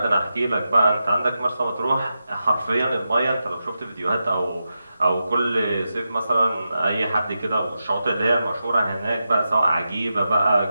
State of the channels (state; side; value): inverted; both; correlation -0.89